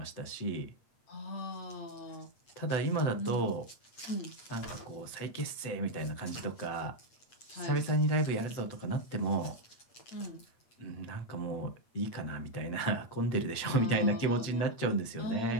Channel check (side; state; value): right; late; 7.9 ms